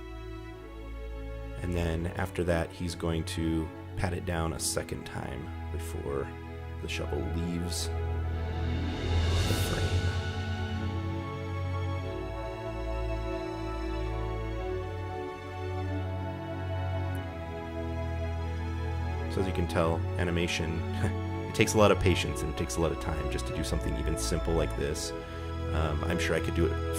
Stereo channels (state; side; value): identical; both; correlation 1.00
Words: And then after that, he's going to pat it down a second time before the shovel leaves the frame. So as you can tell, animation, it takes a lot of patience and it takes a lot of time just to do something even simple like this. I'm sure I could do it